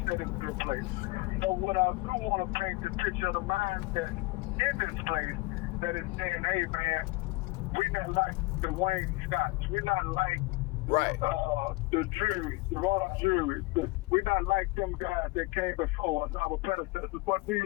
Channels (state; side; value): quieter; right; 22.8 dB